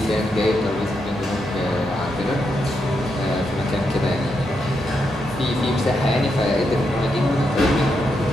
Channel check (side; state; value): both; normal; correlation 0.82